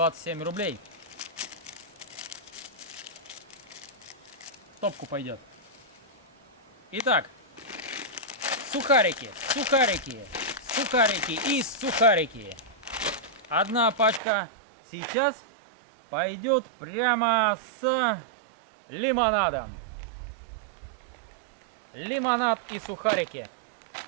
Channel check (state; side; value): drops out; left; at 14.2 s